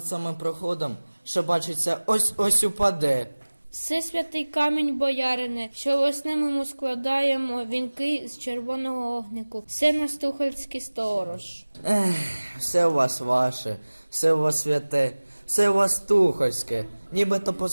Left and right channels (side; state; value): both; inverted; correlation -1.00